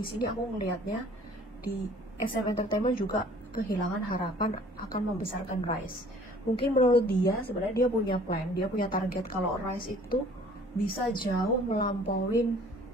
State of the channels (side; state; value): both; normal; correlation 0.53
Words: sini aku melihatnya di SM Entertainment juga kehilangan harapan akan membesarkan Rise. Mungkin menurut dia sebenarnya dia punya plan, dia punya target kalau Rise itu bisa jauh melampauin